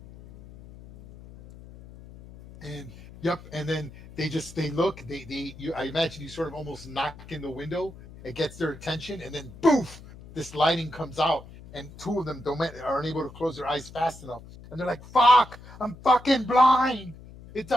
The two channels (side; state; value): left; noise; hum, 18 dB below the sound